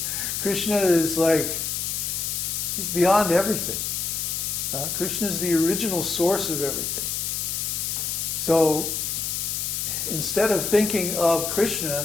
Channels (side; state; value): left; noise; hiss, 1 dB below the sound